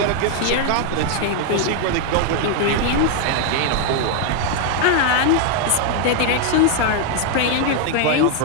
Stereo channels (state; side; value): different; both; correlation 0.00